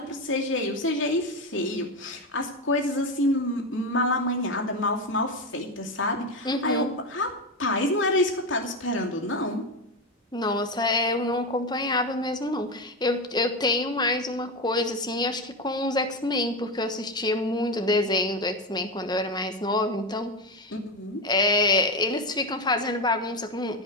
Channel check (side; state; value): both; normal; correlation 0.15